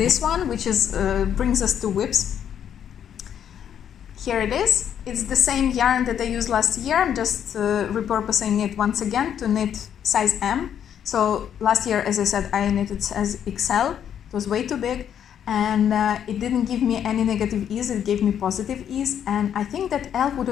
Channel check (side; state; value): right; quieter; 9.2 dB